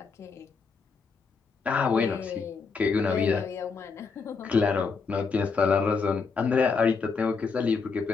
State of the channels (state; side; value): quieter; right; 5.0 dB